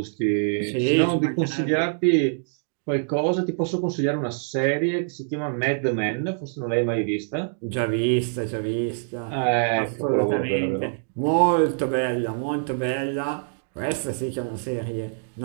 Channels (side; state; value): left; silent; digital silence